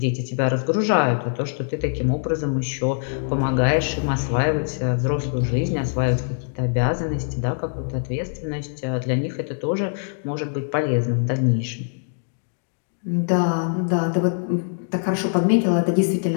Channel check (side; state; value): right; silent; digital silence